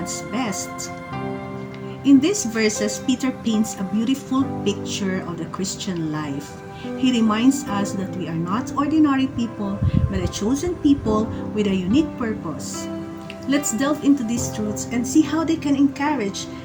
best. In these verses, Peter paints a beautiful picture of the Christian life. He reminds us that we are not ordinary people, but a chosen people with a unique purpose. Let's delve into these truths and see how they can encourage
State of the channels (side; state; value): both; identical; correlation 1.00